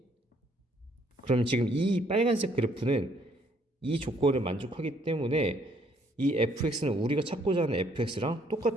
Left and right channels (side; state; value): both; normal; correlation 0.66